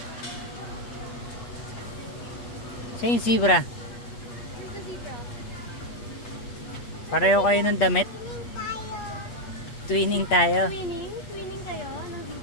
Siya yung zebra. Pareho kayo ng damit? Twinning tayo. Twinning? Twinning kayo ng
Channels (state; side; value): late; right; 8.4 ms